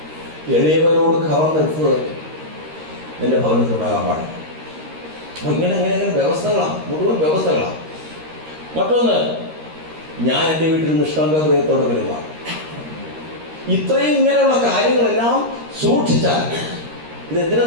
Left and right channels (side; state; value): left; late; 13 ms